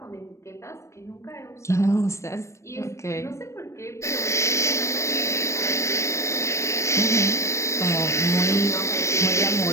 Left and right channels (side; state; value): right; late; 0.14 ms